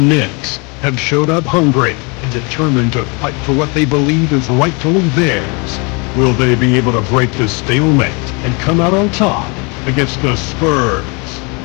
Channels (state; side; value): quieter; right; 31.3 dB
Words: have showed up hungry and determined to fight for what they believe is rightfully theirs. Will they be able to break the stalemate and come out on top against the Spurs?